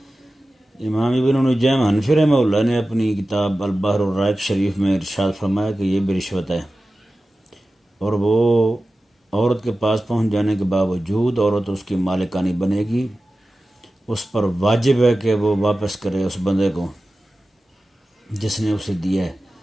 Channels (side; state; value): both; normal; correlation 0.95